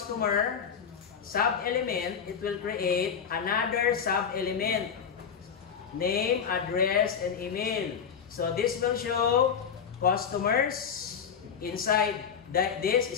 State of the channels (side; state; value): right; quieter; 7.2 dB